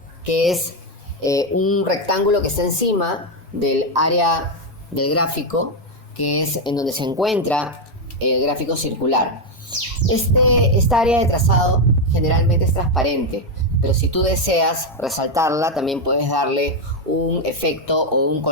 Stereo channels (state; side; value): normal; both; correlation 0.05